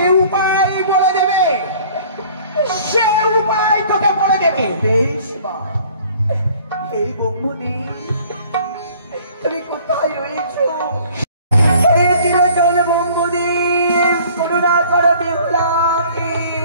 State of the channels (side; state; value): both; inverted; correlation -0.52